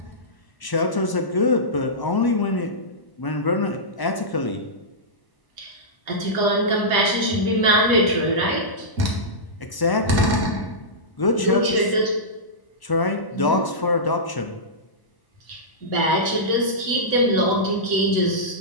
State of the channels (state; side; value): late; right; 1.0 ms